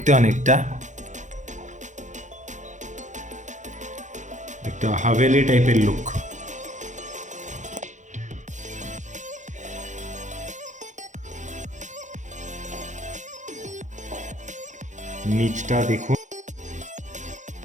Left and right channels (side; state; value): left; late; 0.35 ms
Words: অনেকটা একটা হাভেলি টাইপের লুক। নিচটা দেখুন,